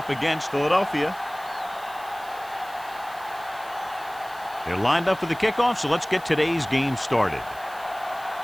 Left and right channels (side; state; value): right; noise; hiss, 21 dB below the sound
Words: against Philadelphia. They're lined up for the kickoff, so let's get today's game started.